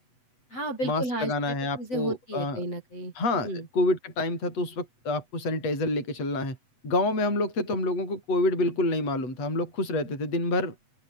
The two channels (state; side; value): late; right; 8.0 ms